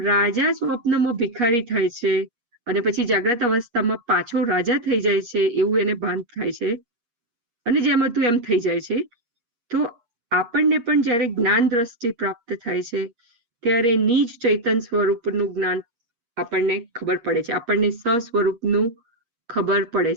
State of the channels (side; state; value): left; late; 8.3 ms